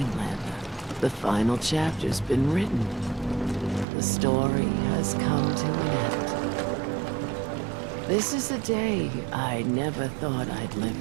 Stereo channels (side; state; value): left; drops out; at 3.9 s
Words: The final chapter's been written. The story has come to an end. This is a day I never thought I'd